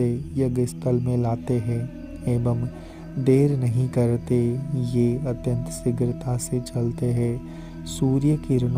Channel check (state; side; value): identical; both; correlation 1.00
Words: यज्ञ स्थल में लाते हैं एवं देर नहीं करते। ये अत्यंत शीघ्रता से चलते हैं। सूर्य